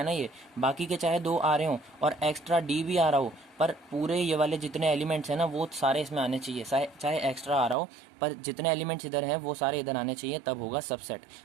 ना, ये बाकी के चाहे 2 आ रहे हो और एक्स्ट्रा डी भी आ रहा हो, पर पूरे ये वाले जितने एलिमेंट्स हैं ना वो सारे इसमें आने चाहिए, चाहे एक्स्ट्रा आ रहा हो, पर जितने एलिमेंट्स इधर हैं वो सारे इधर आने चाहिए, तब होगा सबसेट।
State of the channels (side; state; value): left; drops out; at 7.8 s